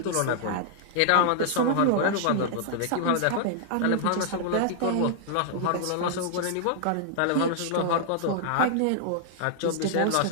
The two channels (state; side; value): different; both; correlation -0.01